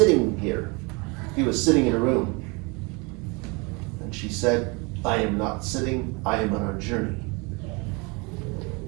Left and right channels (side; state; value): left; quieter; 29.0 dB